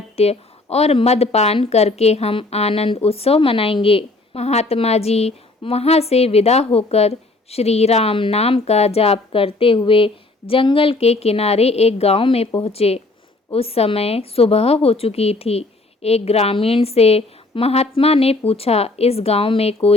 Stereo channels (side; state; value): right; quieter; 3.2 dB